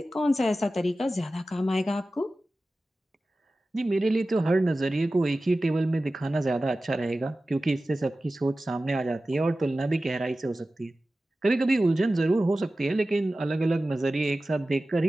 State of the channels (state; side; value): normal; both; correlation 0.95